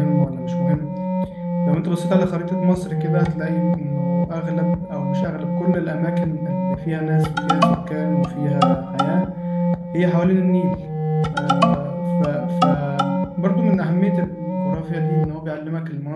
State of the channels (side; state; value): both; identical; correlation 1.00